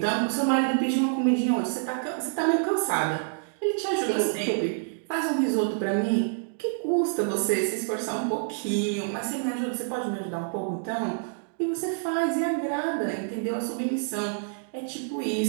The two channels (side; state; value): left; silent; digital silence